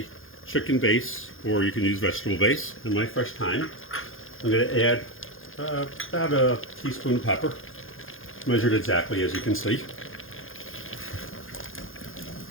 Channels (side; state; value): right; late; 0.59 ms